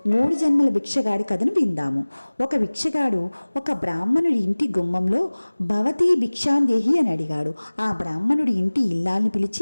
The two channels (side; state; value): both; inverted; correlation -1.00